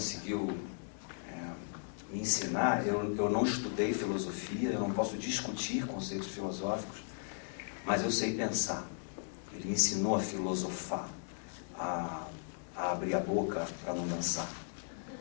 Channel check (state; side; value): silent; right; digital silence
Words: me ensinar, eu não estudei filosofia, eu não posso discutir conceitos filosóficos, mas eu sei pensar. Ele me ensinou a filosofar, a abrir a boca para não dançar,